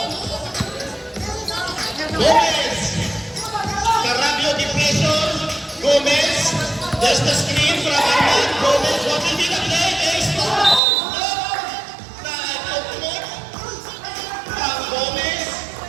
Gomez. Carabio depression. Gomez. There's the screen from Arman. Gomez. What will be the play? Ace to. Gomez.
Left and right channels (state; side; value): drops out; left; at 10.8 s